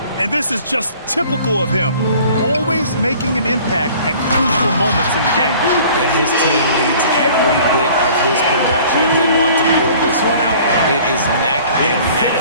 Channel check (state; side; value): inverted; both; correlation -0.50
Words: And this is just typical of him. Always making an impact at crucial moments in the game. And his team needs every bit of his production if they want to pull this one out. It is neck and neck